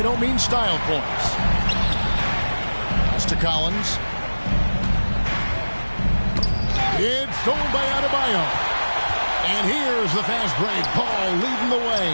don't mean style points. Pass to Collins. It's stolen by Adebayo. And here's the fast break. Ball leading the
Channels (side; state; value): both; inverted; correlation -1.00